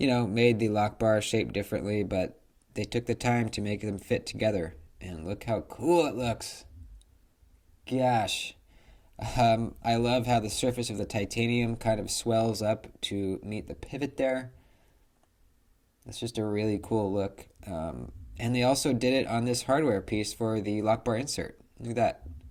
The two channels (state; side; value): identical; both; correlation 1.00